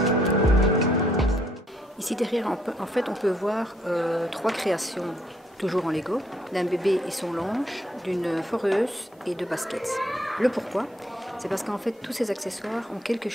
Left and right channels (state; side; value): normal; both; correlation 0.69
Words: Ici derrière, en fait, on peut voir 3 créations, toujours en Lego, d'un bébé et son linge, d'une foreuse et de baskets. Le pourquoi? C'est parce qu'en fait, tous ces accessoires ont quelque